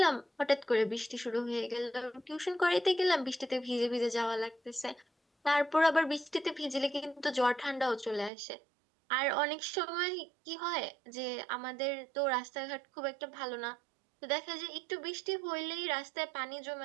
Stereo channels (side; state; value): left; drops out; at 8.3 s